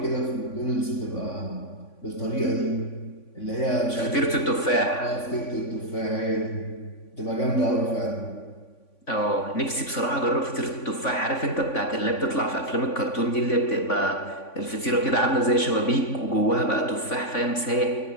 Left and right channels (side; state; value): right; late; 3.5 ms